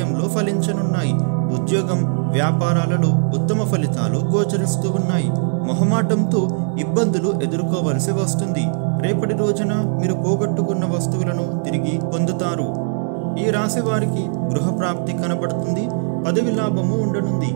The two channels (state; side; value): silent; left; 66 dB below the other